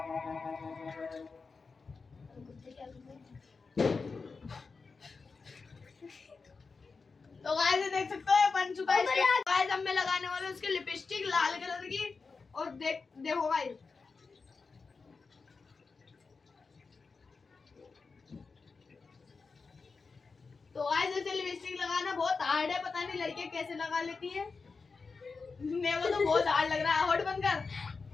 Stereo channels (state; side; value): quieter; right; 4.6 dB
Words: तो गाइस देख सकते हो बन चुका है। गाइस अब मैं लगाने वाला हूँ उसकी लिपस्टिक लाल कलर की। और देखो गाइस, तो गाइस ऐसे लिपस्टिक लगाना बहुत हार्ड है। पता नहीं लड़कियां कैसे लगा लेती है। मेरे को तो बहुत हार्ड लग रहा है। होठ बंद कर।